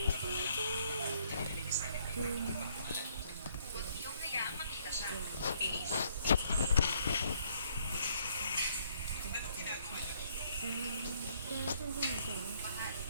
Huwag niyong hayaang makita siya. Bilis. Mahal,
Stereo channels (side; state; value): both; inverted; correlation -0.66